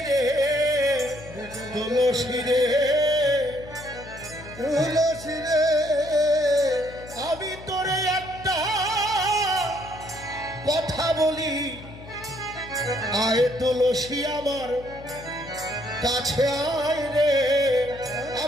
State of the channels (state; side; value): noise; left; hum, 17 dB below the sound